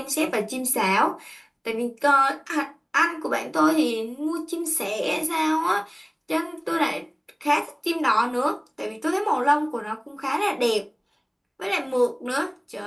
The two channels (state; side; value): identical; both; correlation 1.00